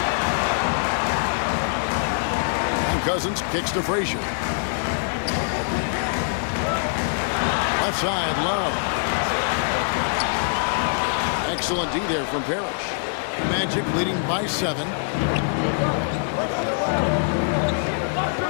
And Cousins kicks to Frazier. Left side, Love. Excellent D there from Parrish. Magic leading by 7.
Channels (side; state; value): right; silent; 63 dB below the other